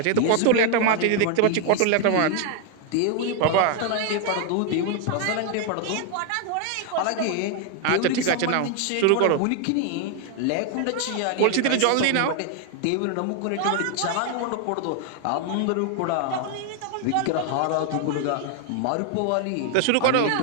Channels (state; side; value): different; both; correlation 0.01